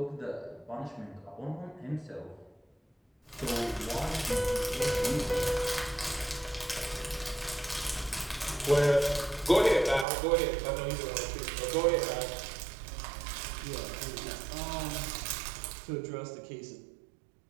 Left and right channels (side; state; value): left; drops out; at 10.1 s